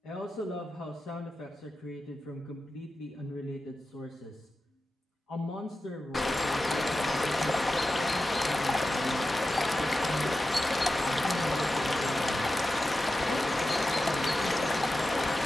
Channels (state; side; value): normal; both; correlation 0.92